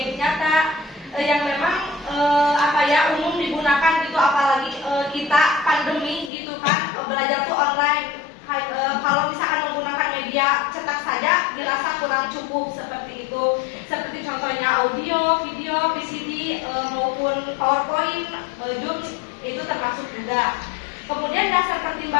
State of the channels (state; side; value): drops out; right; at 6.3 s